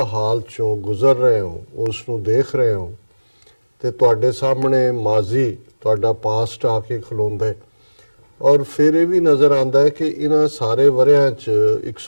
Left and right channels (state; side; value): inverted; both; correlation -1.00